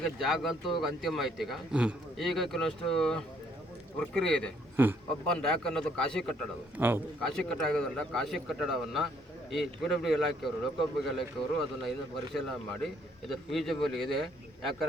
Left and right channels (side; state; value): both; normal; correlation 0.66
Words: ಜಾಗ ಅಂತೂ ಅಂತಿಮ ಆಯ್ತು. ಈಗ ಕೆಲವಷ್ಟು ಪ್ರಕ್ರಿಯೆ ಇದೆ. ಒಬ್ಬನ್ ರ್ಯಾಕ್ ಅನ್ನೋದು ಖಾಸಗಿ ಕಟ್ಟಡ. ಖಾಸಗಿ ಕಟ್ಟಡ ಆಗೋದ್ರಿಂದ ಖಾಸಗಿ ಕಟ್ಟಡವನ್ನು ಈ PWD ಇಲಾಖೆಯವರು, ಲೋಕೋಪಯೋಗಿ ಇಲಾಖೆಯವರು ಅದನ್ನು ಇನ್ನು ಪರಿಶೀಲನೆ ಮಾಡಿ ಇದು ಫೀಸಿಬಲ್ ಇದೆ.